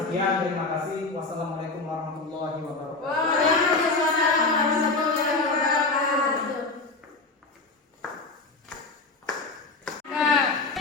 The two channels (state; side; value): quieter; right; 3.5 dB